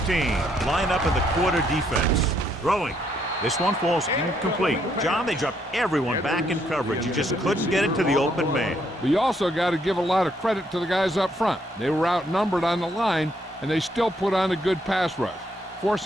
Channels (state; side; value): normal; both; correlation 0.72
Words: team line up in the quarter defense. Throwing. This one falls incomplete. John, they dropped everyone back in coverage. You just couldn't get it to the open man. But you also got to give a lot of credit to the guys up front. They were outnumbered on the line, and they still put on a good pass rush,